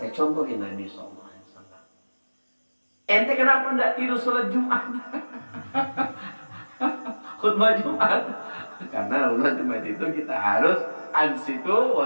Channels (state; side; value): inverted; both; correlation -1.00